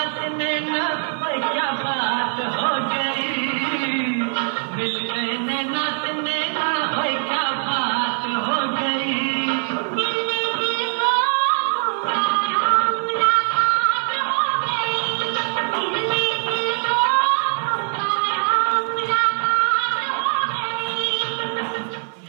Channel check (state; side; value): silent; left; 61 dB below the other